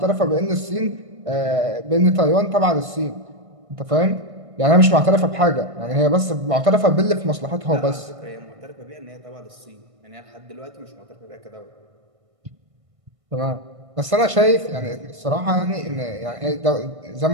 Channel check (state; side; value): late; left; 1.6 ms